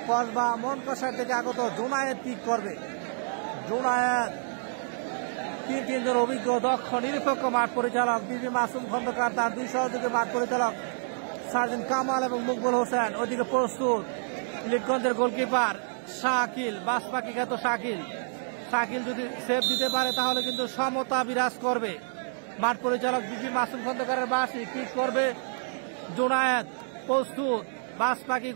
কসবা মনকষার থেকে আগত জোনায়েত কিক করবে। জোনায়েত তিনজন অভিজ্ঞ দক্ষ নিরপেক্ষ মাঠ পরিচালক বিপি মাসুম খন্দকার, তার দুই সহযোগী মাঠ পরিচালক সার্জেন্ট কামাল এবং মুকবুল হোসেন। ওইদিকে প্রস্তুত ইলিটগঞ্জের গোলকিপার শাকিল, বাসপাখি খ্যাত শাকিল। শাকিল যদি সেভ দিতে পারে তাহলে কিন্তু সমতা বিরাজ করবে। মাঠ পরিচালক বিপি মাসুম খন্দকারের বাসি কিক করবে জোনায়েত, প্রস্তুত বাসপাখি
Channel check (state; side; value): silent; left; digital silence